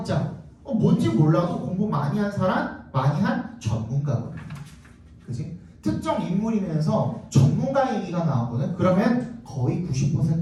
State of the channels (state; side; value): identical; both; correlation 1.00